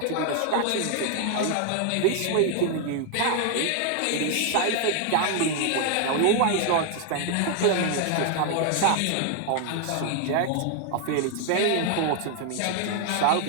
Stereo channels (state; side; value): different; both; correlation 0.00